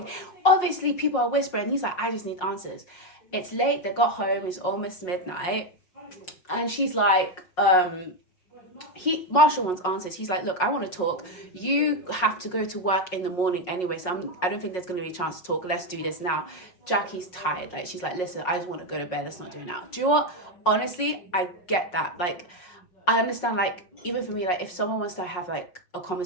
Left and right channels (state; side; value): late; right; 5.5 ms